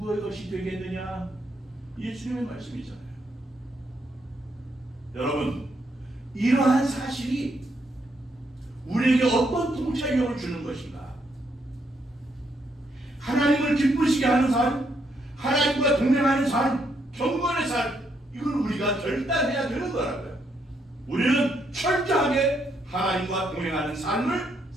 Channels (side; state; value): both; normal; correlation 0.76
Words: 것이 되겠느냐? 예수님의 말씀이잖아요. 여러분, 이러한 사실이 우리에게 어떤 통찰력을 주는 것인가? 하나님을 기쁘시게 하는 삶, 하나님과 동행하는 삶, 경건의 삶, 이걸 우리가 결단해야 되는 거라고요. 우리는 철저하게 하나님과 동행하는 삶을